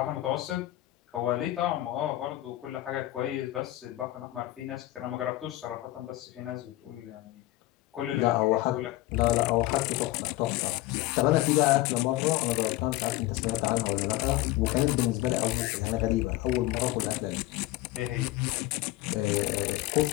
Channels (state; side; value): quieter; right; 16.9 dB